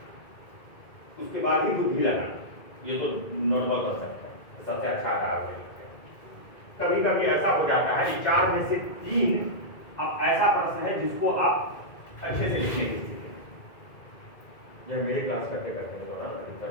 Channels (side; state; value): right; late; 2.1 ms